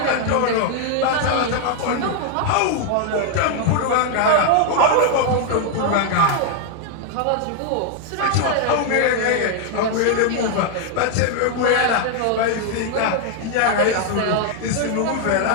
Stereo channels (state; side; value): different; both; correlation 0.00